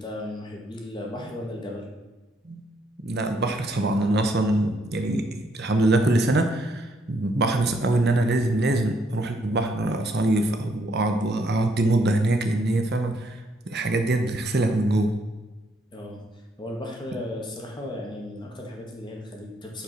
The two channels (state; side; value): normal; both; correlation 0.71